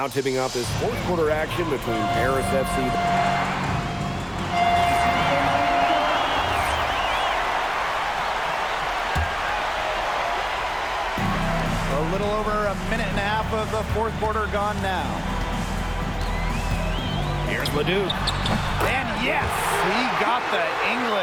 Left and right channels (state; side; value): identical; both; correlation 1.00